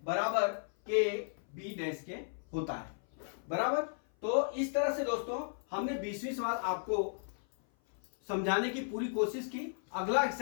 बराबर के बी डैश के होता है बराबर। तो इस तरह से दोस्तों हमने 20वीं सवाल आपको समझाने की पूरी कोशिश की। अगला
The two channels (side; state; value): right; silent; 55 dB below the other